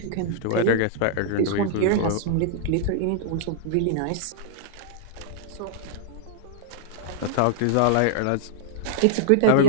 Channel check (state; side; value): different; both; correlation -0.02